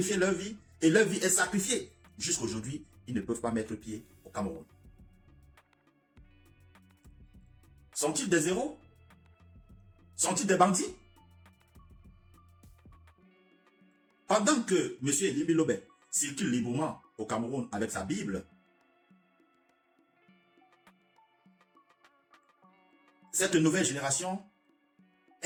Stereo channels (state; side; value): identical; both; correlation 1.00